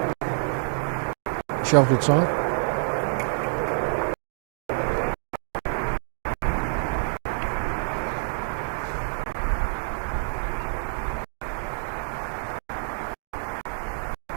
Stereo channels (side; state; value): left; silent; digital silence